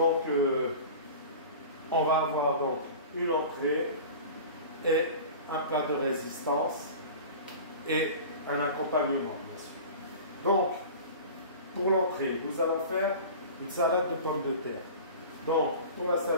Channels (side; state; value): both; inverted; correlation -0.37